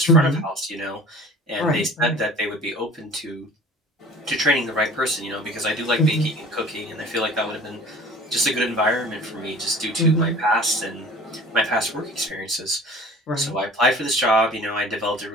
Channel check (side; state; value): both; normal; correlation 0.44